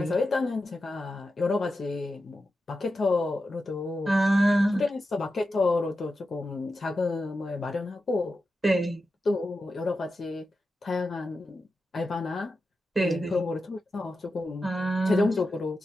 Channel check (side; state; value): both; normal; correlation 0.90